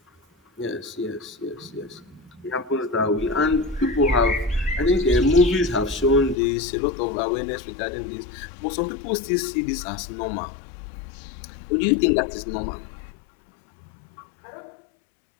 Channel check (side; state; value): right; drops out; at 6.4 s